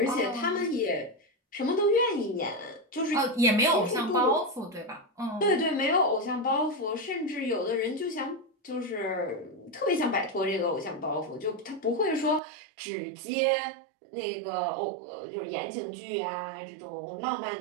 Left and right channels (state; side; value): drops out; left; at 12.4 s